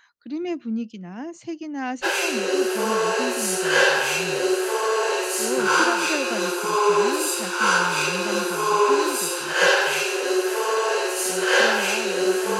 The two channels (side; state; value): both; identical; correlation 1.00